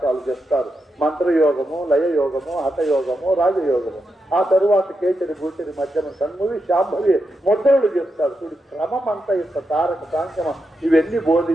చేస్తారు. మంత్రయోగము, లయయోగము, హఠయోగము, రాజయోగము. ఆ తరువాత కేచరి, భూచరి, మధ్యమ, సన్మువి, శాంభవి ముద్రలు చేస్తారు. చూడు, క్రమం అంతా యొక్క తారక సాంఖ్యమ ఇవన్నీ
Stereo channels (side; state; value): both; normal; correlation 0.85